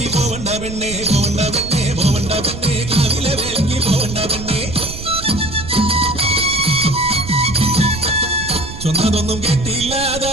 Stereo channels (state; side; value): noise; right; rumble, 11 dB below the sound